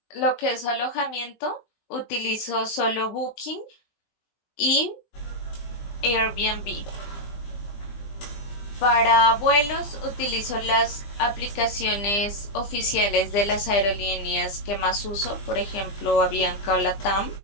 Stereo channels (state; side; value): late; right; 20 ms